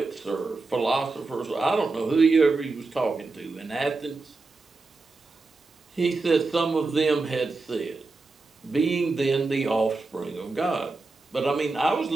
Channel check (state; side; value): quieter; left; 3.6 dB